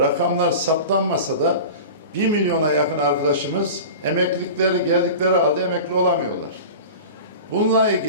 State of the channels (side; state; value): both; inverted; correlation -0.33